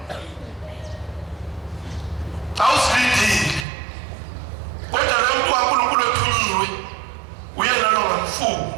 Awusilindile. Kodwa lo muntu kaNkulunkulu othunyiwe uyena lo ngamfuni.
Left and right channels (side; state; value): left; drops out; at 3.7 s